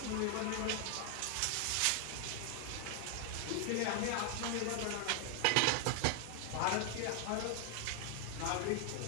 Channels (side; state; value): both; different; correlation 0.00